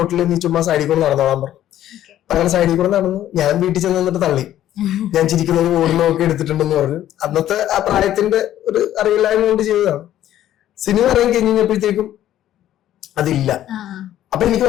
നീ ചുമ്മാ സൈഡിൽ കൂടെ നടന്നോളാൻ പറഞ്ഞു. അങ്ങനെ സൈഡിൽ കൂടെ നടന്നു. ഞാൻ വീട്ടിൽ ചെന്ന് നിന്നിട്ട് തള്ളി, ഞാൻ ചിരിക്കുന്നത് ഓടുന്നൊക്കെ എടുത്തിട്ടുണ്ടെന്ന് പറഞ്ഞു. അന്നത്തെ ആ പ്രായത്തിന്റെ ഒരു അറിയില്ലായ്മ കൊണ്ട് ചെയ്തതാണ്. സിനിമ ഇറങ്ങി കഴിഞ്ഞപ്പോഴത്തേക്കും അതില്ല. അപ്പൊ എനിക്ക്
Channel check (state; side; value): quieter; right; 12.4 dB